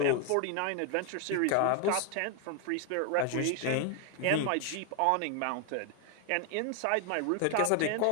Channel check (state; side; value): different; both; correlation 0.00